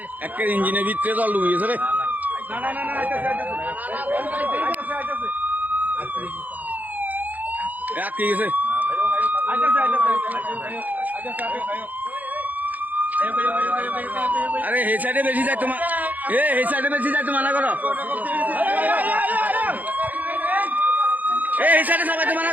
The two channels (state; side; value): late; left; 0.080 ms